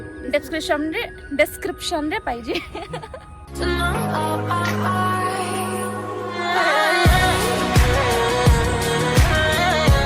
डिस्क्रिप्शन रे पाहिजे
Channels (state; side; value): identical; both; correlation 1.00